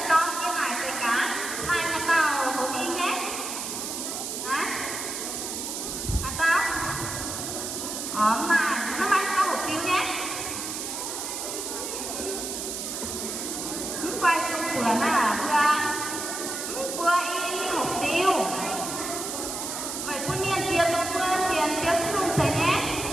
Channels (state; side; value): noise; right; hiss, 5 dB below the sound